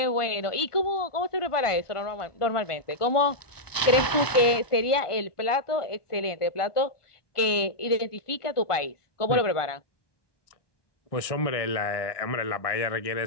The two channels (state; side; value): late; right; 1.2 ms